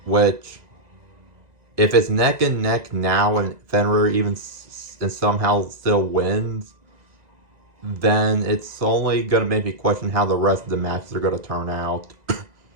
which, if it's neck and neck now and Fenrir even and somehow still wins, then it's only gonna make me question how the rest of the matches are gonna turn out.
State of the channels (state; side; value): late; left; 1.9 ms